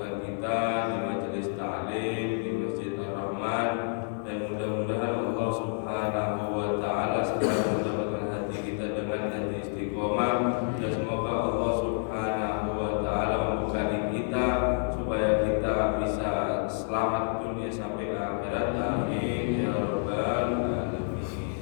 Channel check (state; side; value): silent; right; digital silence